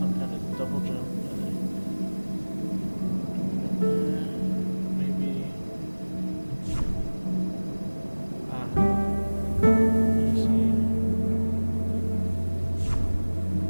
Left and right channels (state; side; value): inverted; both; correlation -1.00